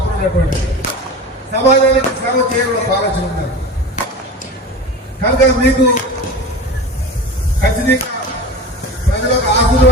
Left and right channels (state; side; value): normal; both; correlation 0.32